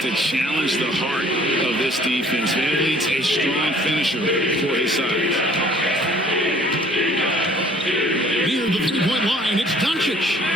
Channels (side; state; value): both; normal; correlation 0.56